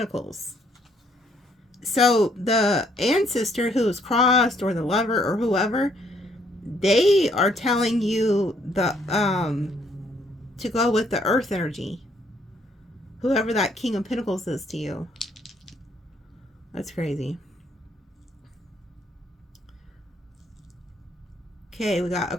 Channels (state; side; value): normal; both; correlation 0.68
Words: So the ancestor who is crossed, or the lover or whoever, they are telling you to go with the earth energy. Whoever that King of Pentacles is to you. That's crazy. Okay, we got